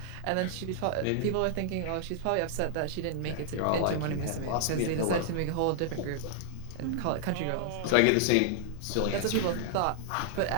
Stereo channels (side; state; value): both; different; correlation -0.01